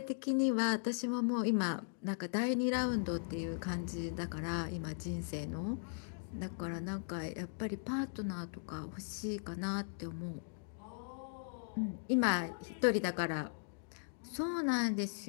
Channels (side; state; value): right; silent; digital silence